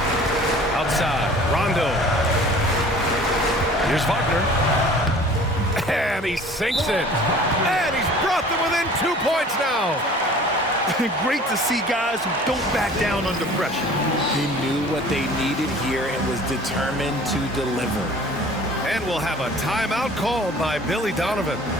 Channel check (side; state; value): both; normal; correlation 0.47